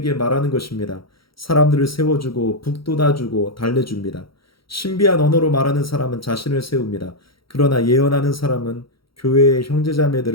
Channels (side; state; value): right; late; 0.74 ms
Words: 말하는 것입니다. 사람들을 세워주고 북돋아주고 달래줍니다. 신비한 언어로 말하는 사람은 자신을 세웁니다. 그러나 예언하는 사람은 교회의